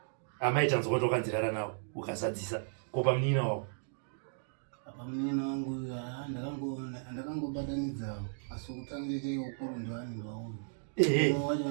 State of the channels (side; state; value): left; silent; digital silence